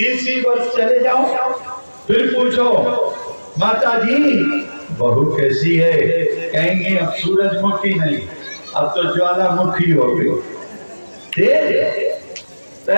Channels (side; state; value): both; inverted; correlation -1.00